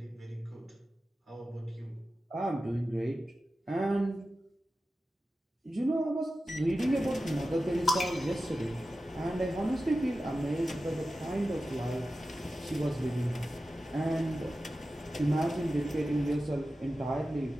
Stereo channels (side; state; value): both; normal; correlation 0.93